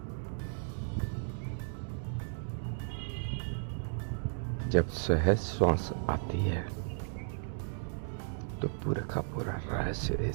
जब सहज श्वास आती है तो पूरा का पूरा रहस्य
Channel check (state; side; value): silent; left; digital silence